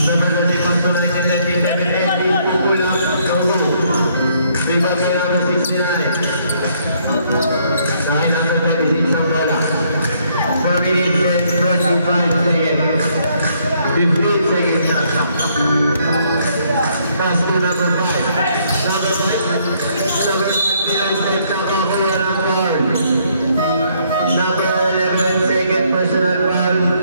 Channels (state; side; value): inverted; both; correlation -0.68